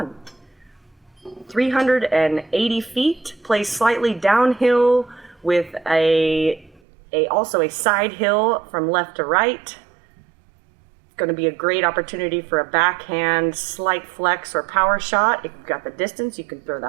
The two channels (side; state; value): left; drops out; at 6.8 s